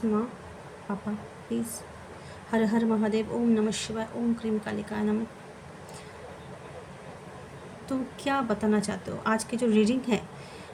माँ पापा प्लीज़। हर हर महादेव, ओम नमः शिवाय, ओम क्रीम कालिकाय नमः। तो क्या बताना चाहते हो? आज की जो रीडिंग है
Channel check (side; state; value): both; identical; correlation 1.00